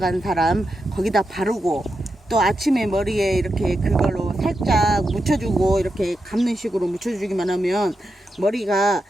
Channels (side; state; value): both; normal; correlation 0.87